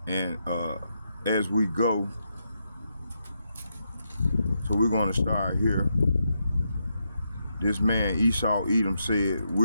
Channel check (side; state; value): both; inverted; correlation -0.82